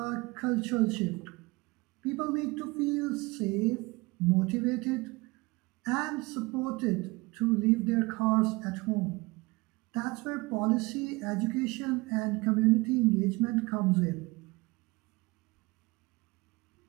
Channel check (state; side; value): quieter; left; 23.8 dB